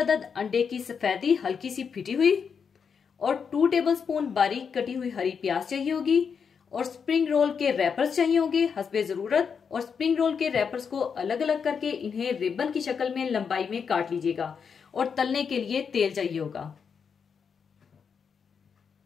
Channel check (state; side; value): quieter; right; 6.4 dB